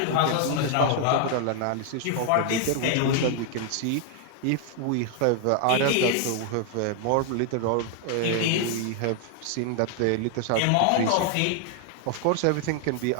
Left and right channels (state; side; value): different; both; correlation 0.00